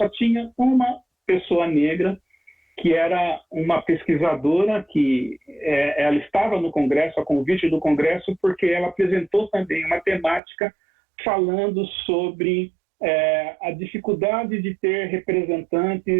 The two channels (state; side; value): drops out; left; at 10.4 s